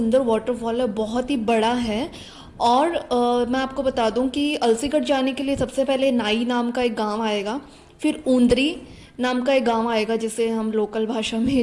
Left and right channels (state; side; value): identical; both; correlation 1.00